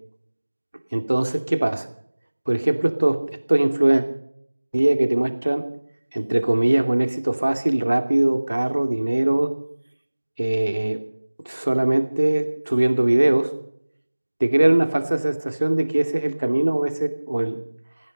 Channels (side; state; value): both; inverted; correlation -1.00